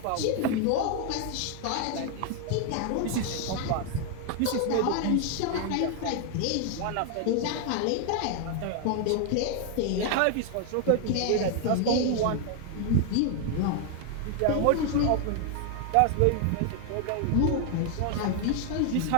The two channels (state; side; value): different; both; correlation 0.00